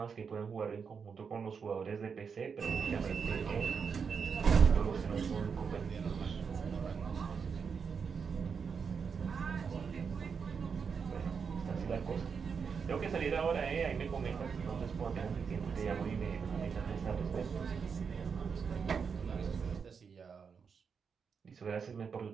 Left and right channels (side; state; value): left; quieter; 6.1 dB